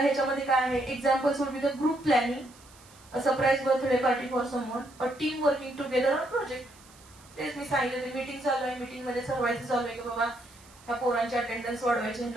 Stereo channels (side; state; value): right; noise; hiss, 25 dB below the sound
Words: ह्याच्यामध्ये काय आहे, examples would be the group planning, a surprise birthday party for someone, a team working together on project. तेच मी सांगितलं, मीटिंग चालू आहे, मीटिंग मध्ये ठरवायचं चालू आहे की बाबा ह्या पोरांची अटेंडन्स वाढवायची,